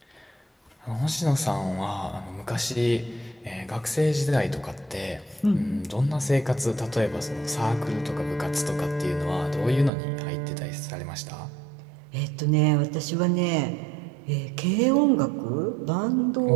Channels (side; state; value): left; drops out; at 9.9 s